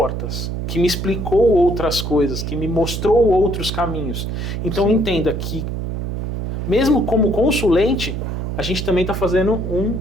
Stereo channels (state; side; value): noise; right; hum, 3 dB below the sound